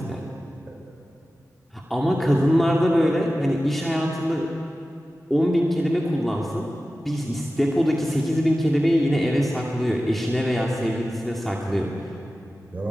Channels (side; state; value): both; normal; correlation 0.95